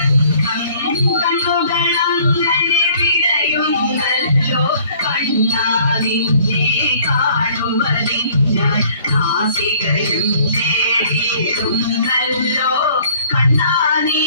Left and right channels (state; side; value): inverted; both; correlation -0.56